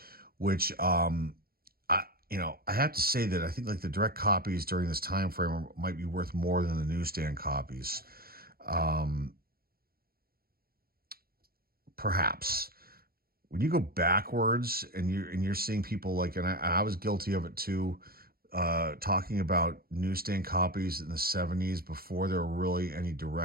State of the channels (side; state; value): left; late; 0.44 ms